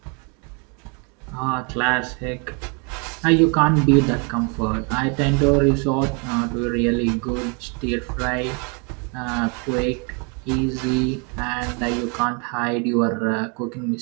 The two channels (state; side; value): quieter; left; 34.7 dB